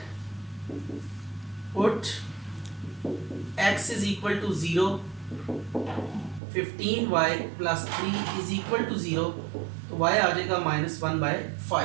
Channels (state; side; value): drops out; left; at 6.4 s